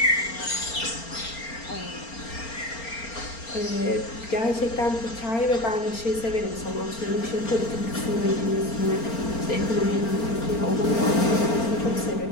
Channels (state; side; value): late; right; 4.4 ms